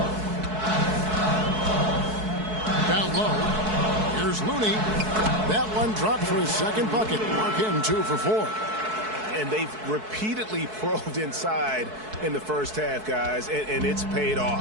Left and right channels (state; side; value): late; left; 4.6 ms